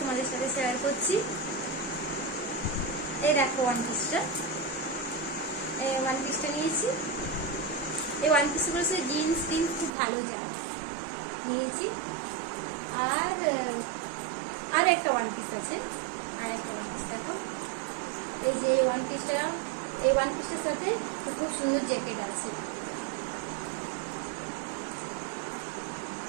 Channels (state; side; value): drops out; left; at 9.9 s